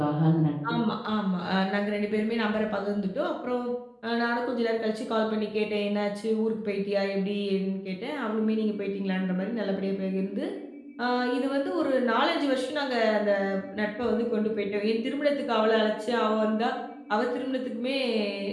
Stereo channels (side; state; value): both; identical; correlation 1.00